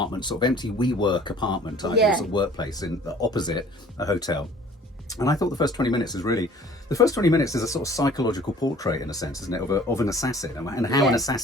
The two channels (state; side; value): normal; both; correlation 0.51